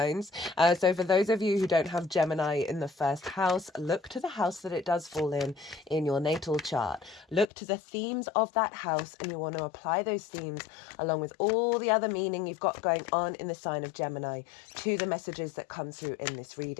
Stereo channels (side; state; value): right; drops out; at 7.5 s